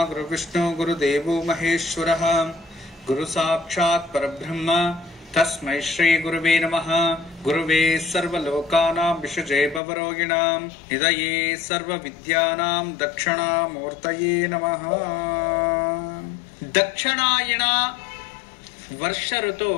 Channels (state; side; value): drops out; right; at 9.8 s